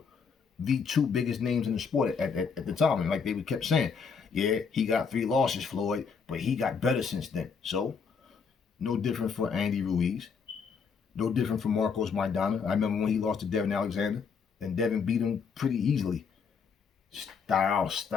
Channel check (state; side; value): quieter; right; 5.9 dB